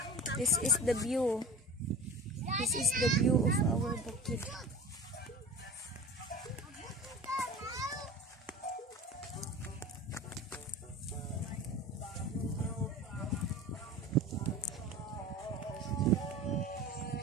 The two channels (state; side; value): normal; both; correlation 0.35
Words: This is the view. This is the view of our bukid.